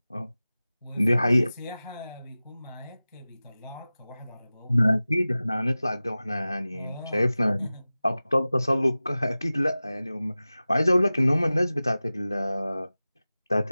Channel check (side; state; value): both; inverted; correlation -0.97